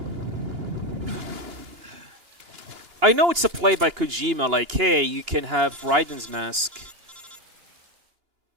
I know it's a play by Kojima, like, hey, you can have Raiden's mask.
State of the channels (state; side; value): late; left; 2.9 ms